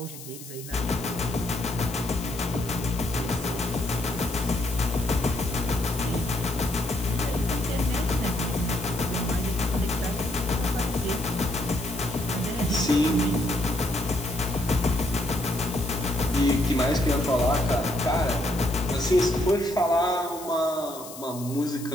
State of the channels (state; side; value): noise; left; hiss, 14 dB below the sound